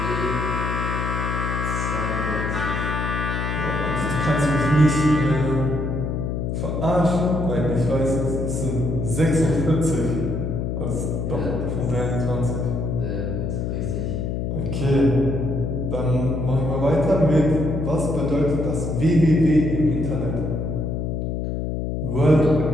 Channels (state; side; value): noise; left; hum, 2 dB below the sound